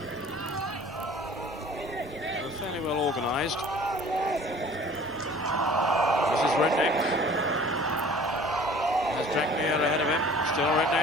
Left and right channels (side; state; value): both; normal; correlation 0.48